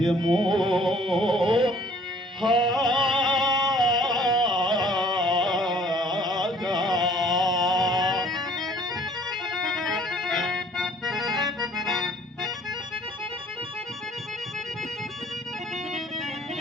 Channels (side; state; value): both; normal; correlation 0.55